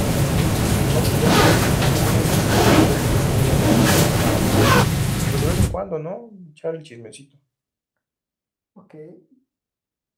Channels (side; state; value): both; identical; correlation 1.00